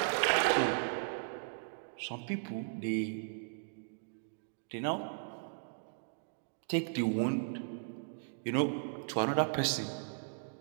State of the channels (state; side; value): silent; left; digital silence